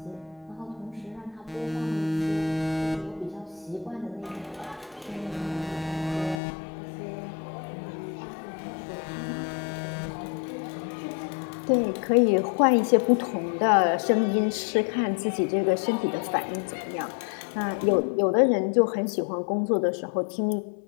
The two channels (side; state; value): right; drops out; at 6.4 s